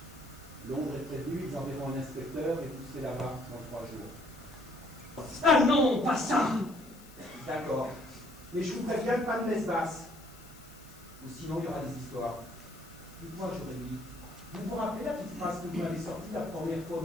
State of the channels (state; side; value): noise; left; hiss, 22 dB below the sound